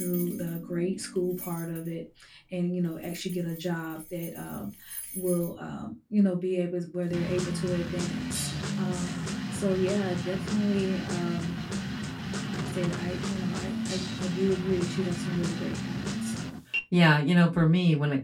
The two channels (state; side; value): identical; both; correlation 1.00